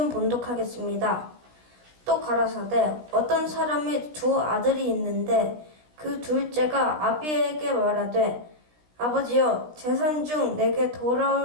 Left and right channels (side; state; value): left; late; 16 ms